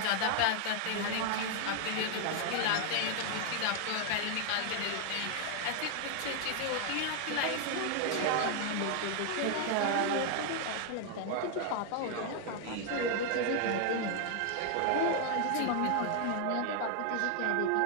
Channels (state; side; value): different; both; correlation 0.00